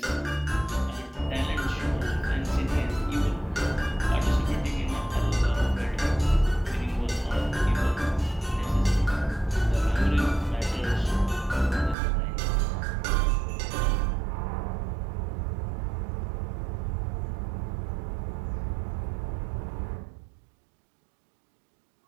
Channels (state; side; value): drops out; left; at 12.0 s